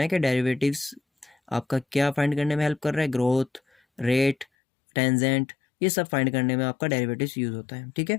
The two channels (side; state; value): right; drops out; at 4.5 s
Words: कि डेरिवेटिव्स आपका क्या फाइंड करने में हेल्प कर रहा है, ग्रोथ, रेट, टेंजेंट, ये सब फाइंड करने में आपका डेरिवेटिव्स यूज़ होता है, ठीक